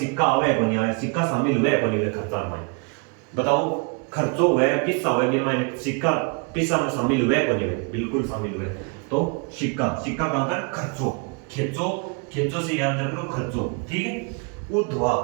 आवे को नहीं आवे, सिक्का शामिल हुए को नहीं खर्चा में? बताओ खर्चो हुआ है, किस्सा हुआ है, मैंने सिक्का किस्सा में शामिल हुआ है कोने में, बिल्कुल शामिल हुआ है। तो सिक्का, सिक्का कहां पर? खर्चो, खेचो, खेचो से याद रख लो खर्चो, ठीक है। उधवा,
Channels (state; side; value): quieter; left; 32.9 dB